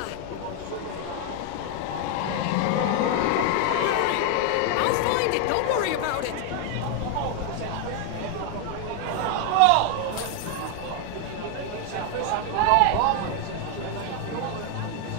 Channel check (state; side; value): different; both; correlation 0.01